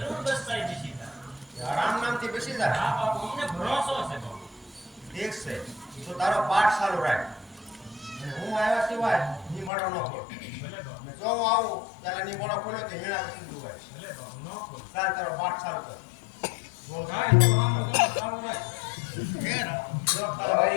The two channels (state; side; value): drops out; right; at 9.7 s